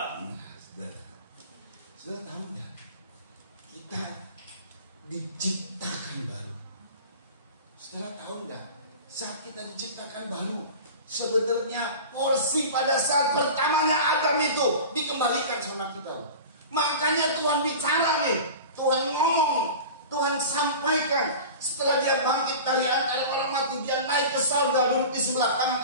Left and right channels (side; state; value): both; inverted; correlation -0.35